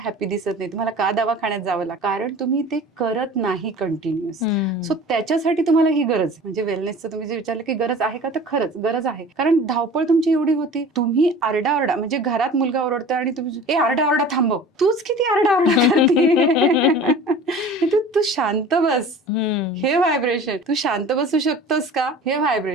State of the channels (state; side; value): normal; both; correlation 0.41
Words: दिसत नाही? तुम्हाला का दवाखान्यात जावं लागतं? कारण तुम्ही ते करत नाही कंटिन्युअस. सो त्याच्यासाठी तुम्हाला ही गरज आहे. म्हणजे वेलनेसचं तुम्ही जे विचारलं की गरज आहे का, तर खरंच गरज आहे. कारण धावपळ तुमची एवढी होती, तुम्ही आरडाओरडा, म्हणजे घरात मुलगा ओरडतोय आणि तुम्ही ए आरडाओरडा थांबव, तूच किती आरडाओरडा करते. तू शांत बस, हे व्हायब्रेशन. तू शांत बसू शकतोस का, हे